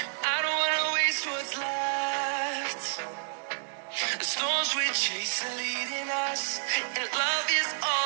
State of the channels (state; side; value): silent; left; digital silence